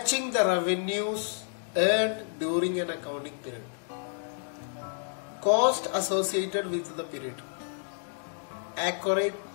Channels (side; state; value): right; silent; digital silence